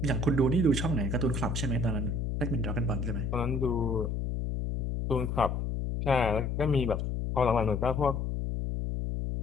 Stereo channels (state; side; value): noise; left; hum, 1 dB below the sound